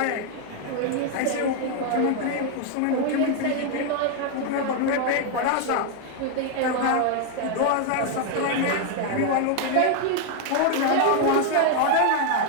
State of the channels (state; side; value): different; both; correlation 0.00